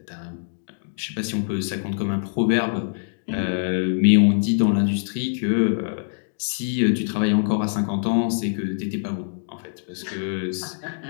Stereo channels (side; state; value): right; silent; digital silence